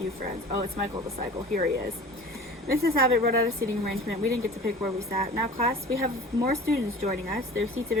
friends. Oh, it's Michael the Cycle. Here he is. Mrs. Abbott wrote out a seating arrangement. We didn't get to pick where we sat. Now, class, we have more students joining us. Their seats have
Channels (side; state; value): both; normal; correlation 0.41